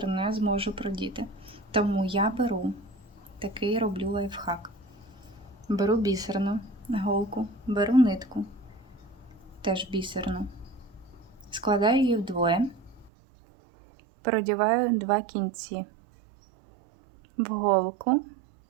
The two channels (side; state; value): left; drops out; at 13.1 s